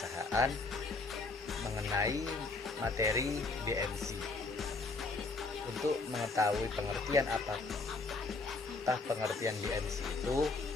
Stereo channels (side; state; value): right; quieter; 3.6 dB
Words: mengenai materi BMC. Untuk mengetahui pengertian apakah pengertian BMC itu,